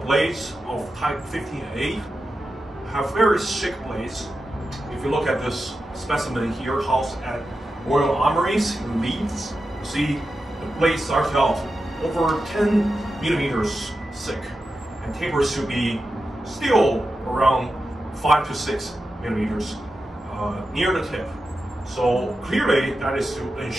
blades of type 15A have very thick blades. If you look at this specimen here, housed at Royal Armories in Leeds, you see the blade starts out over 10 millimeters thick and tapers to be still around 5 to 6 millimeters near the tip. So clearly that is to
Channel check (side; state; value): both; normal; correlation 0.90